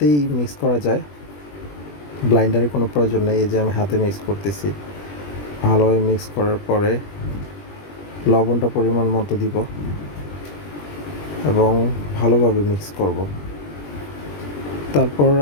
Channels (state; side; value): late; right; 20 ms